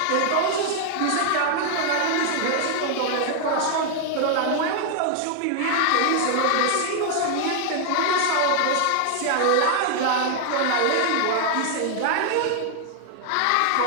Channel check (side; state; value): both; different; correlation 0.00